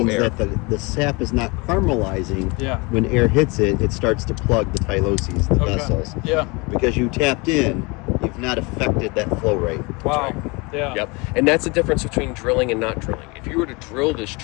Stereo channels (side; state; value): right; quieter; 27.6 dB